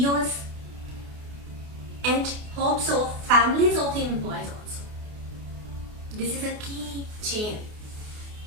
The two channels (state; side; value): late; left; 28 ms